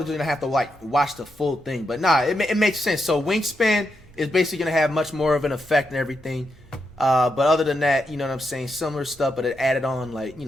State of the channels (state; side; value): normal; both; correlation 0.83